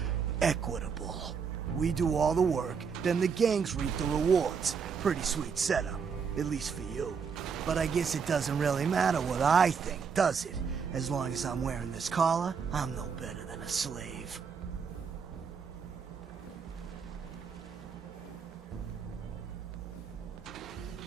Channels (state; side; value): quieter; left; 6.1 dB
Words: equitable. We do all the work, then the gangs reap the rewards. Pretty sweet setup, at least for you. But I guess it doesn't really matter what I think, does it? As long as I'm wearing this collar, I'm no better than a slave.